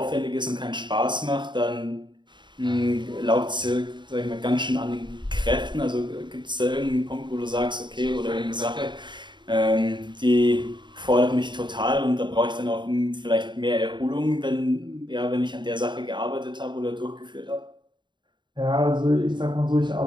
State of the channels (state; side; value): late; left; 0.22 ms